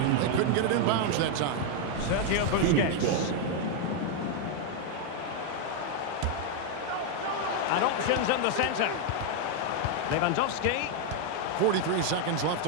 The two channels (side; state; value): both; different; correlation 0.00